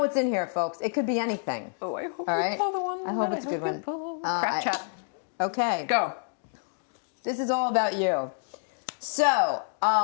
in here, folks. It could be anything. Oh, I hope you pull the one. I hope it's a good one. Crap chat. Okay. Go. This is all about you. So,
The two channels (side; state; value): right; silent; digital silence